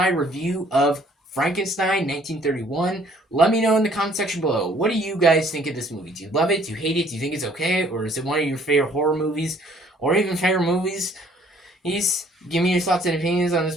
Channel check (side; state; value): both; normal; correlation 0.59